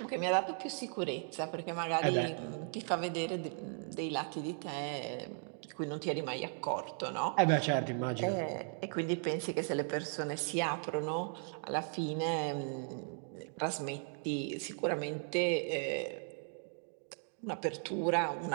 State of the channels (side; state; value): left; silent; 53 dB below the other